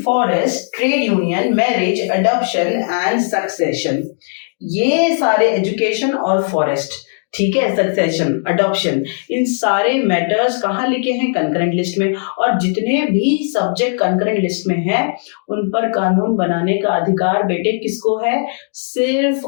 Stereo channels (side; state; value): right; silent; digital silence